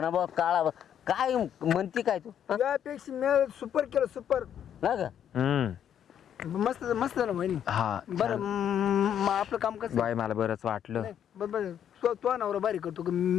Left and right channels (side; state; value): right; quieter; 9.4 dB